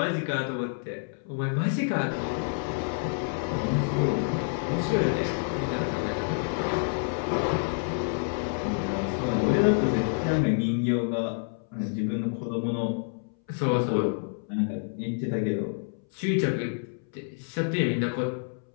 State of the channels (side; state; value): right; silent; 59 dB below the other